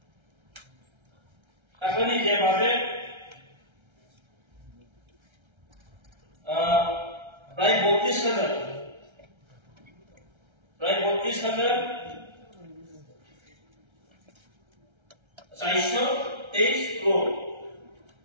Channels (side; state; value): left; late; 1.3 ms